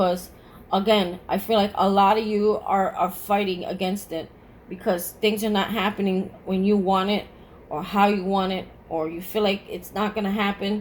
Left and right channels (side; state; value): both; identical; correlation 1.00